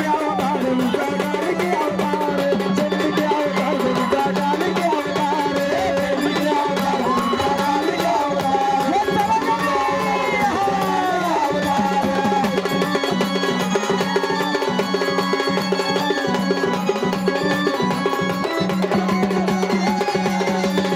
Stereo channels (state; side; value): identical; both; correlation 1.00